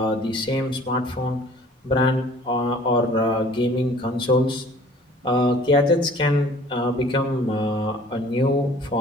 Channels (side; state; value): both; normal; correlation 0.52